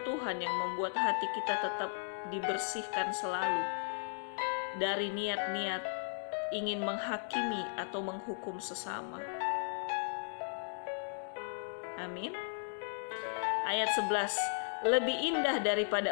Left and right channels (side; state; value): right; silent; digital silence